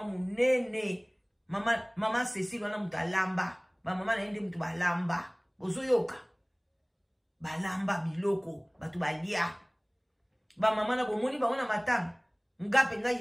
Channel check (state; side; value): identical; both; correlation 1.00